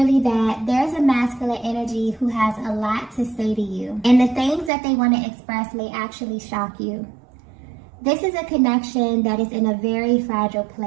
that there's a masculine energy who has a lot to say to you. And the things that they want to express may actually shock you. This is a connection that is in a very fragile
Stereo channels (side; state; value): left; drops out; at 4.7 s